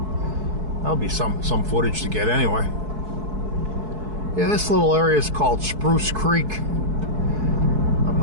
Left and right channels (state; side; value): late; left; 4.7 ms